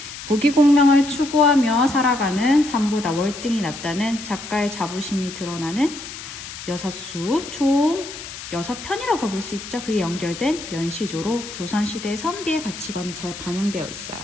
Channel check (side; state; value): left; noise; hiss, 11 dB below the sound